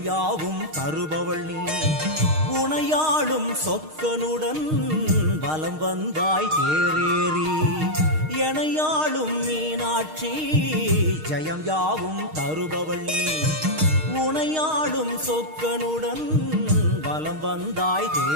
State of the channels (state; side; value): late; left; 6.4 ms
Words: யாவும் தருபவள் நீ உனையாளும் சொக்கனுடன் வலம் வந்தாய் தேரேறி எனையாளும் மீனாட்சி ஜெயம் யாவும் தருபவள் நீ உனையாளும் சொக்கனுடன் வலம் வந்தாய்